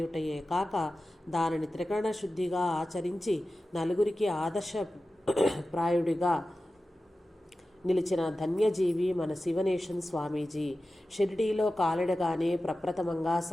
కాక దానిని త్రికరణ శుద్ధిగా ఆచరించి నలుగురికి ఆదర్శప్రాయుడిగా నిలిచిన ధన్యజీవి మన శివనేషన్ స్వామీజీ. షిరిడీలో కాలడగానే ప్రప్రథమంగా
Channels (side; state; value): both; normal; correlation 0.94